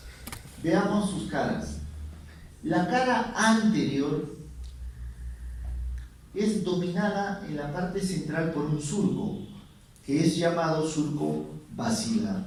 Veamos sus caras. La cara anterior es dominada en la parte central por un surco, que es llamado surco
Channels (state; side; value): identical; both; correlation 1.00